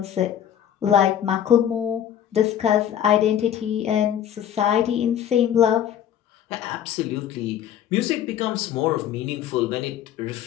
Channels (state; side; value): quieter; right; 10.1 dB